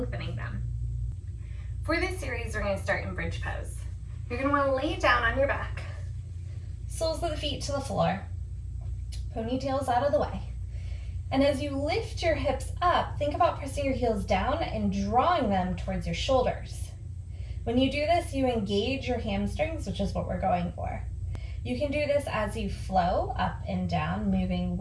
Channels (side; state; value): both; identical; correlation 1.00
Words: them. For this series we're going to start in bridge pose. You're going to want to lay down on your back, soles of the feet to the floor, ponytails out of the way. And as you lift your hips up, think about pressing your heels down and drawing them towards your shoulders. When you do this, you engage your hamstrings, which is what we're going for. You can do this as you flow up and down, moving